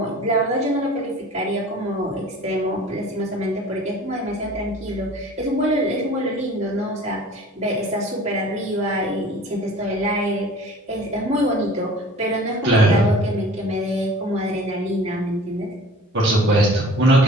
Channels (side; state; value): both; normal; correlation 0.45